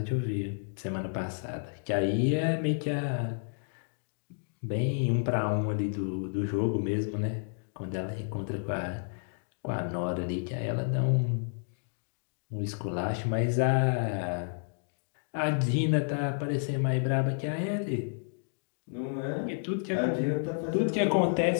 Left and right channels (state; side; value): silent; right; digital silence